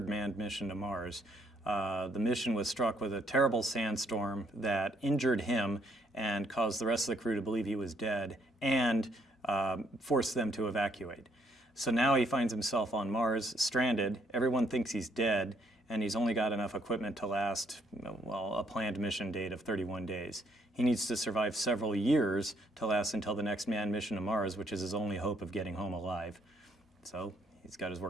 manned mission to Mars. The mission was struck with a terrible sandstorm that injured him and caused the rest of the crew to believe he was dead and forced them to evacuate. So now he finds himself on Mars, stranded. Everyone thinks he's dead, and he's only got enough equipment to last, well, a planned mission date of 31 days. He needs to survive several years to last until the next manned mission to Mars, which is his only hope of getting home alive. So he's got his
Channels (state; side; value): normal; both; correlation 0.69